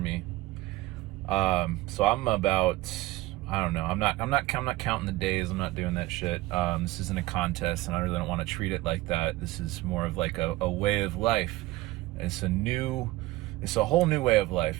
So I'm about, I don't know. I'm not counting the days. I'm not doing that shit. This isn't a contest, and I really don't want to treat it like that. This is more of like a way of life. It's a whole new way of life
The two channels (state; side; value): quieter; left; 18.6 dB